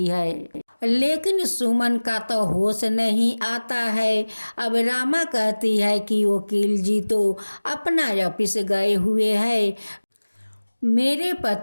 है, लेकिन सुमन का तो होश नहीं आता है। अब रामा कहती है कि वकील जी तो अपना ऑफिस गए हुए हैं, मेरे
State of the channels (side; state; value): both; inverted; correlation -1.00